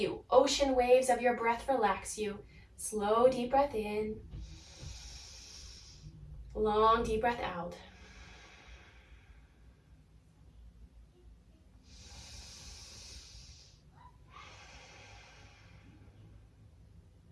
ocean waves of your breath relax you. Slow, deep breath in. Long, deep breath out.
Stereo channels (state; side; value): identical; both; correlation 1.00